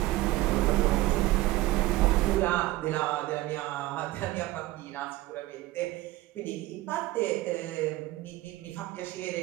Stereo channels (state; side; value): quieter; left; 17.8 dB